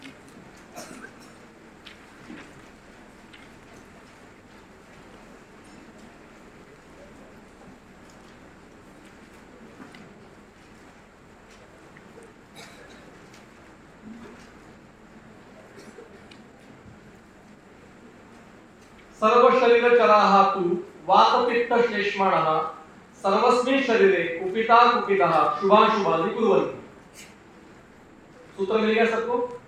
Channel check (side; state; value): both; identical; correlation 1.00